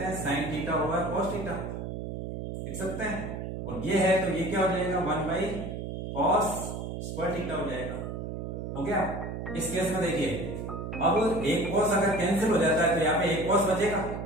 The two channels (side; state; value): right; noise; hum, 6 dB below the sound